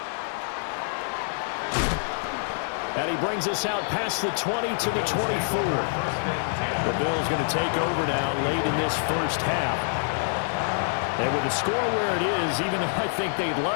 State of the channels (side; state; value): right; silent; digital silence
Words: And he brings us out past the 20 to the 24. The Bills going to take over now late in this first half. And with the score where it is, even though I think they'd